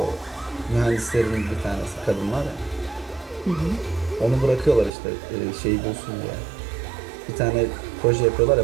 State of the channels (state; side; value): drops out; left; at 4.9 s